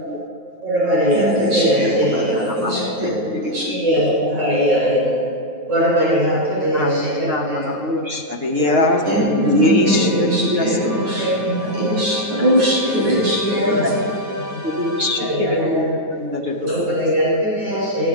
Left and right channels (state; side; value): late; left; 9.4 ms